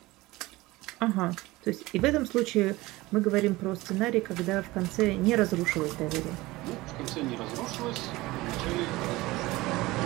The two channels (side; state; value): left; quieter; 19.9 dB